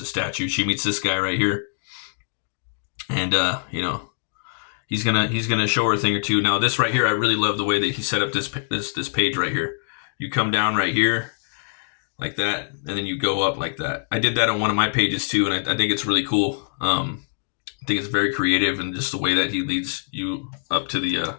a statue. She meets this guy right here. And you know, he's gonna show her a thing or two. Now this right here, I really love the way that he set up this page right here. You come down right here like that, and then you go up like that. I did that on one of my pages too, and I think it's really cool. I think it's very creative, and just the way that he leads you up to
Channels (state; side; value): silent; right; digital silence